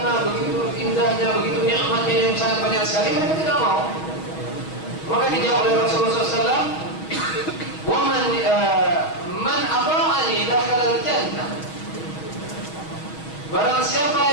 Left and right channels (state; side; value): late; right; 6.3 ms